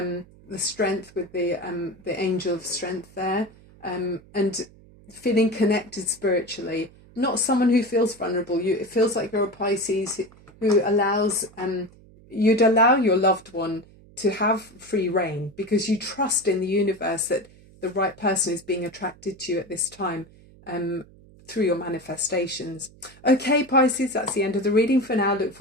the strength with the angel of strength there, and feeling connected spiritually. Not someone who feels vulnerable. It feels like you're a Pisces who you'd allow your loved one to have free reign, because you trust in the universe that the right person is being attracted to you at this time. through your manifestations. Okay, Pisces, that's the end of the reading for now. Look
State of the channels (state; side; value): noise; right; hum, 24 dB below the sound